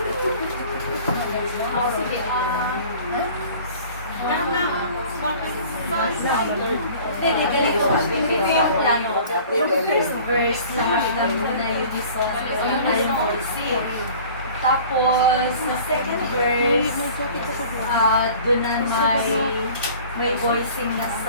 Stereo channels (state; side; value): inverted; both; correlation -0.46